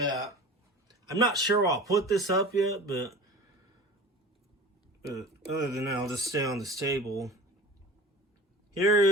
I'm not sure I'll put this up yet, but other than that, I'll just stay on this table. Here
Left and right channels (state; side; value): normal; both; correlation 0.38